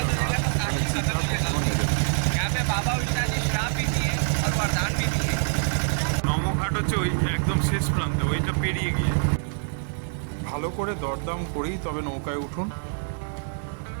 ঘাট, এখানে চিতা কখনো নেবে না। নমঘাট হচ্ছে ওই একদম শেষ প্রান্তে, ওইটা পেরিয়ে গিয়ে। ভালো করে দরদাম করেই তবে নৌকায় উঠুন।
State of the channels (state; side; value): silent; left; digital silence